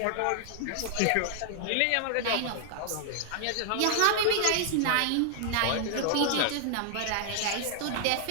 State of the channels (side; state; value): both; different; correlation 0.00